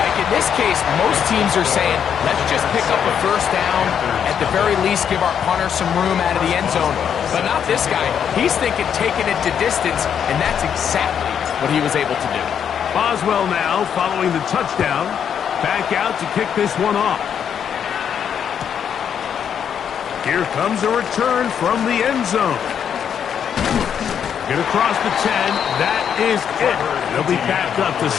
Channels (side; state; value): right; quieter; 8.2 dB